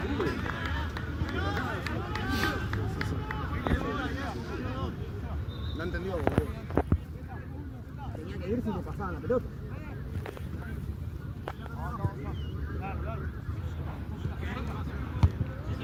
No entendió, boludo. Tenía que ir si le pasaban la pelota.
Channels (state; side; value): identical; both; correlation 1.00